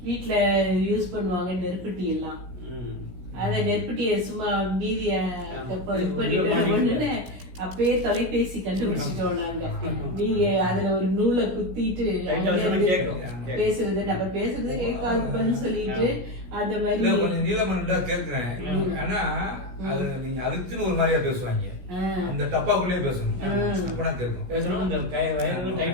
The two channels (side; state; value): left; late; 16 ms